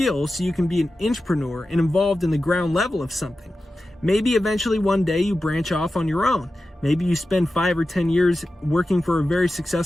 so you can be an intrapreneur and involved in the ground level of something. Maybe eventually one day you branch off on your own. Maybe you spend 5 or 10 years working for a very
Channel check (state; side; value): normal; both; correlation 0.93